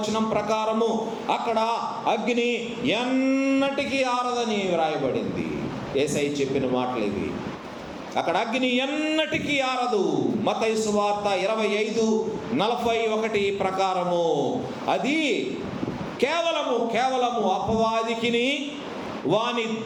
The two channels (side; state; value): both; identical; correlation 1.00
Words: ప్రకారము అక్కడ అగ్ని ఎన్నటికీ ఆరదని వ్రాయబడింది. యేసయ్య చెప్పిన మాటలు ఇవి. అక్కడ అగ్ని ఎన్నటికీ ఆరదు. మత్తయి సువార్త 25:41 ప్రకారము అది కేవలము అపవాదికిని వాని